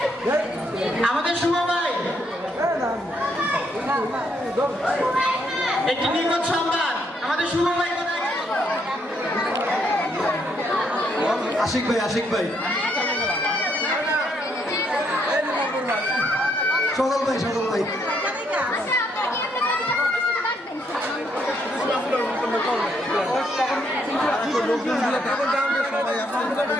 আমাদের শুভ ভাই, একটি নিখোঁজ সংবাদ, আমাদের শুভ ভাই কোথায় গেল? আশিক ভাই, আশিক ভাই, সদল ভাই, সদল ভাই।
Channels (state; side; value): normal; both; correlation 0.73